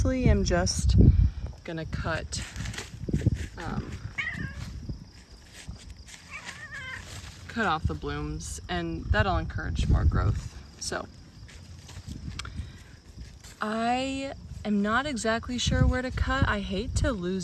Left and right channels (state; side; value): identical; both; correlation 1.00